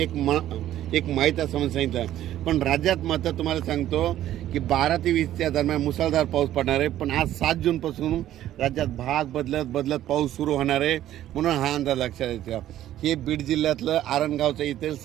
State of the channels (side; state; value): left; quieter; 12.7 dB